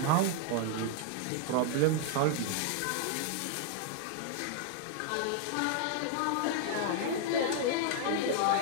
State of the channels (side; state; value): both; different; correlation 0.00